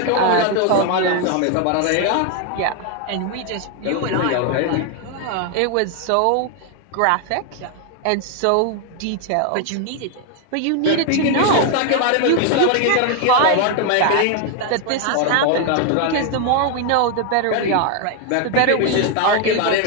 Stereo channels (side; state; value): both; different; correlation 0.01